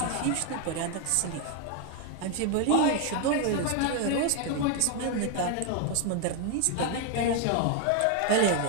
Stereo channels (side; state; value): both; different; correlation 0.00